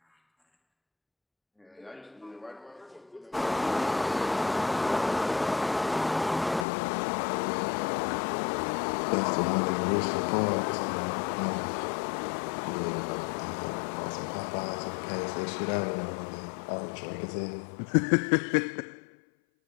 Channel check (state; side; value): drops out; right; at 6.7 s